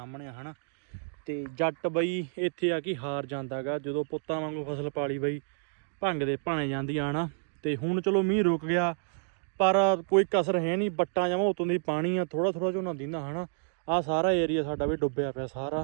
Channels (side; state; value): left; silent; digital silence